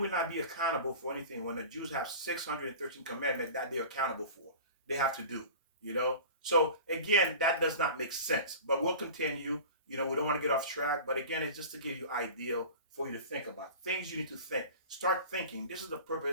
not be accountable for anything when the Jews have 613 commandments that they're accountable for? They have to do, So again, that does not make sense. But we'll continue. We don't want to get off track. But again, it's just to give you idea for you to think about. Things you need to think. Start thinking. This is the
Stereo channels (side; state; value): both; inverted; correlation -0.37